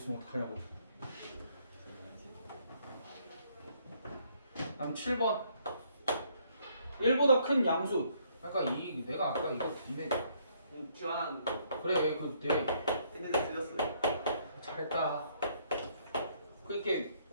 어떡하냐고. 다음 7번 1보다 큰 양수. 그러니까 내가 아까 이거 니네 지환 그래 그내 했는데 틀렸어요. 잘했다. 그렇게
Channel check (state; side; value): inverted; both; correlation -0.68